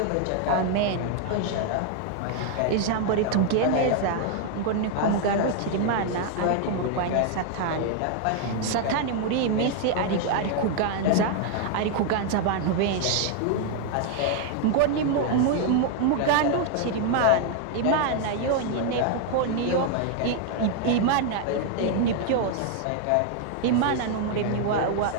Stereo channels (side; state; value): both; different; correlation 0.00